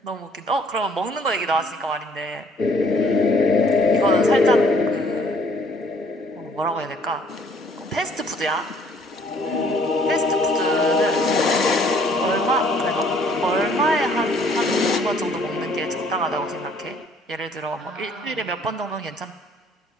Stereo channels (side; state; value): both; normal; correlation 0.60